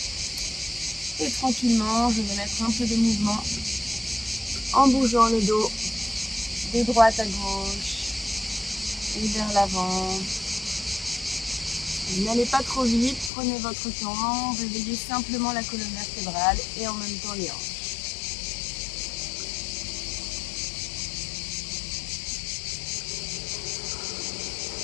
Et tranquillement, je vais mettre un peu de mouvement en bougeant le dos de droite à gauche et vers l'avant. N'allez pas trop vite, prenez votre temps, réveillez simplement la colonne vertébrale et en même temps les hanches.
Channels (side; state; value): right; drops out; at 13.3 s